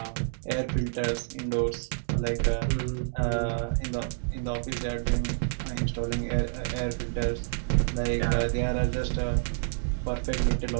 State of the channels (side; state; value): left; silent; digital silence